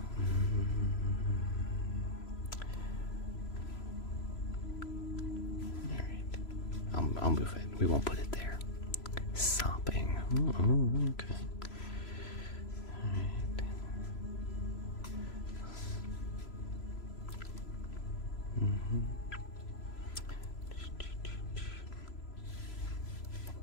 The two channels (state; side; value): late; right; 3.0 ms